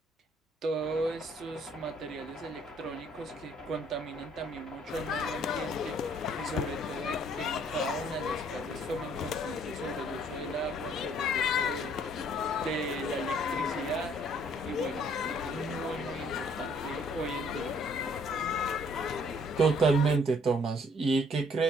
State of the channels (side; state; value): both; normal; correlation 0.62